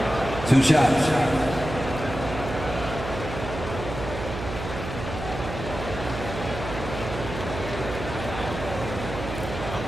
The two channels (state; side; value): noise; right; hum, 7 dB below the sound